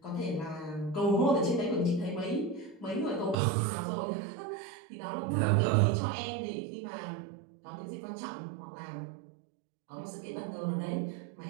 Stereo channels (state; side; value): drops out; left; at 3.4 s